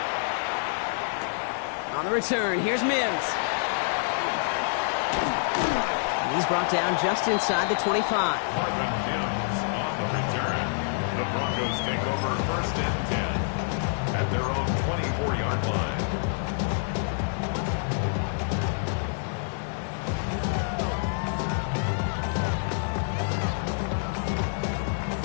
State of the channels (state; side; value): silent; right; digital silence